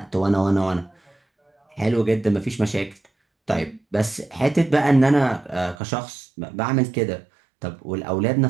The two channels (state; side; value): drops out; left; at 5.8 s